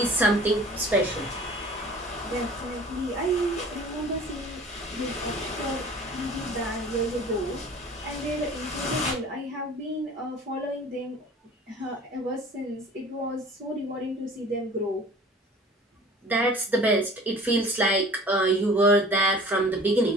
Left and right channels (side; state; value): both; normal; correlation 0.45